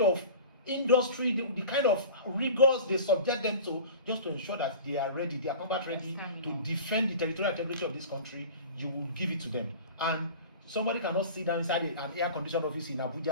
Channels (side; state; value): both; inverted; correlation -0.38